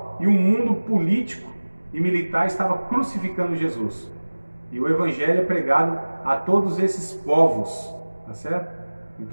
e o mundo político e militar estava crucificando Jesus. E o evangelho é pregado a todos esses povos, tá certo? Em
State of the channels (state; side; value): inverted; both; correlation -1.00